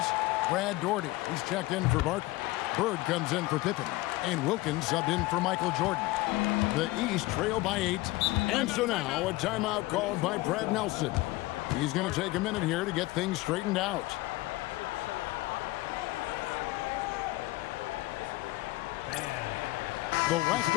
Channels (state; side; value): quieter; right; 19.6 dB